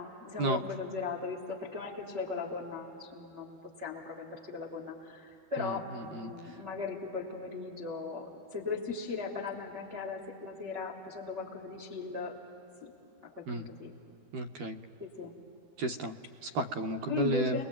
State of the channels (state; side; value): late; left; 12 ms